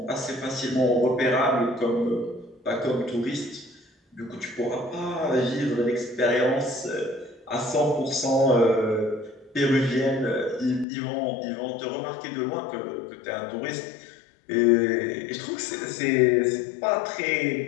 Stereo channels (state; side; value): drops out; right; at 10.9 s